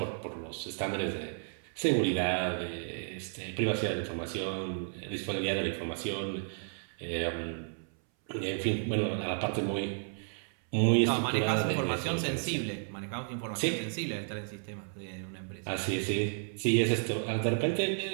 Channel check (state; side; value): silent; left; 56 dB below the other